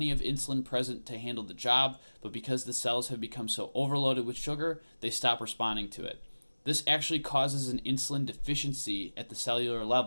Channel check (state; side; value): inverted; both; correlation -1.00